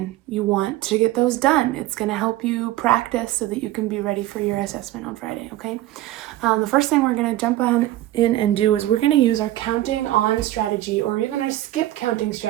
you want to get those done. It's going to help you practice so that you can be ready for your assessment on Friday, okay? The first thing we're going to jump in and do is we're going to use our counting on strategy, or even our skip counting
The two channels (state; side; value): quieter; left; 15.2 dB